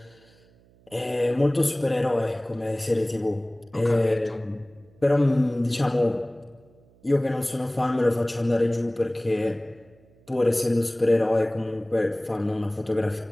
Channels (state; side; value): noise; right; hum, 30 dB below the sound